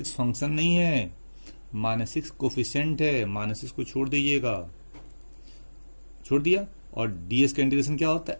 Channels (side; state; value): both; inverted; correlation -1.00